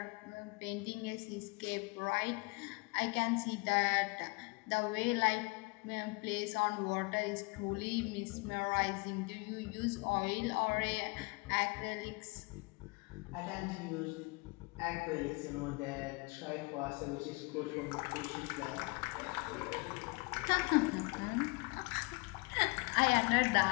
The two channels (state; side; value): quieter; right; 28.2 dB